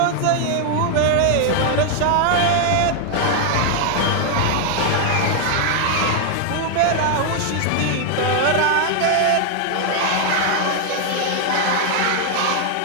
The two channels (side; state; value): both; different; correlation 0.00